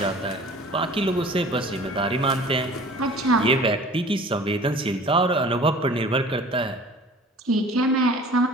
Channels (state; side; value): normal; both; correlation 0.45